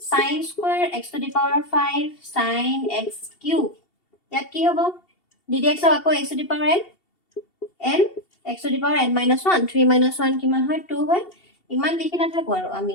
sin square x to the power 5 sin x cube ইয়াত কি হ'ব ddx of আকৌ x to the power n x to the power n minus 1 3 minus 1 কিমান হয় 2 হয় ইমান লিখি নাথাকো আৰু আমি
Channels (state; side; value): late; right; 2.7 ms